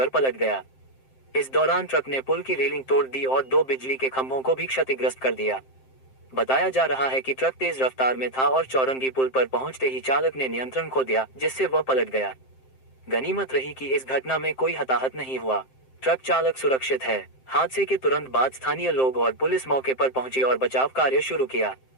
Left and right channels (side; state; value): right; late; 7.6 ms